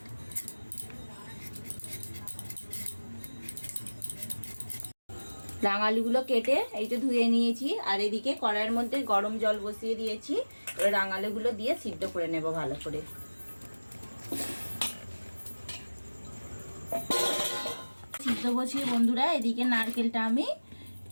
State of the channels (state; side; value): inverted; both; correlation -1.00